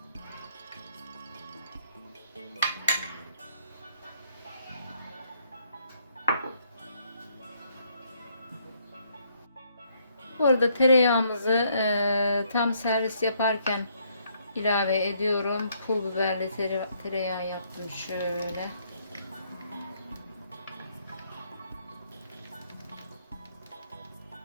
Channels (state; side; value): inverted; both; correlation -0.70